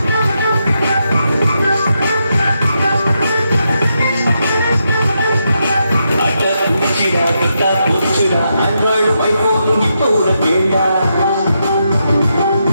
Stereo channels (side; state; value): both; inverted; correlation -0.83